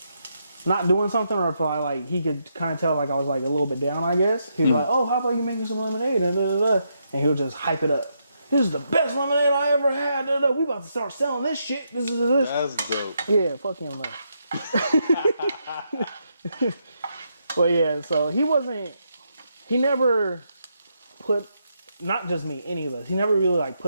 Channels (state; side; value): inverted; both; correlation -0.80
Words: not doing something, or if he could kind of tell, like, I was like a little bit down, I guess. He'd be like, "Oh, how about you making some lemonade?" And he would just hype it up. This is the best lemonade I ever had. We about to start selling this shit. This. That's dope. Yeah, fuck him though. But yeah, so he never put not just me, any of us. He never really like